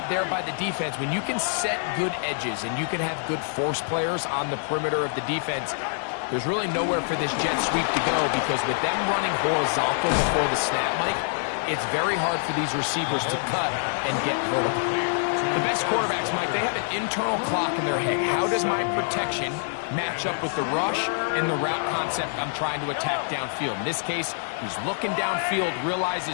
there by the defense. When you can set good edges and you can have good force players on the perimeter of the defense, there's really nowhere for this jet sweep to go, because with them running horizontal before the snap, Mike, it's very hard for these receivers to cut and get vertical. The best quarterbacks, Mike, they have an internal clock in their head. How does my protection match up with the rush and the route concept I'm trying to attack downfield? In this case, he's looking downfield,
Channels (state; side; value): silent; right; digital silence